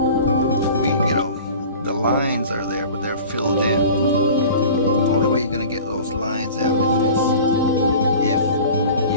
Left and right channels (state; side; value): inverted; both; correlation -0.41